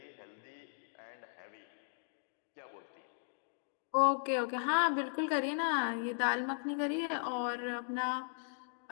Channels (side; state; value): right; silent; digital silence